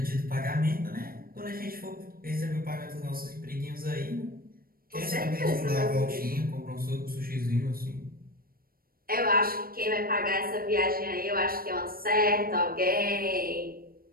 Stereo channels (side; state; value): left; late; 0.43 ms